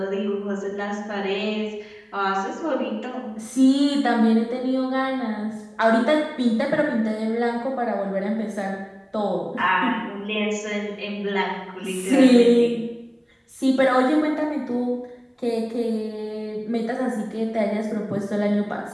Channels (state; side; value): identical; both; correlation 1.00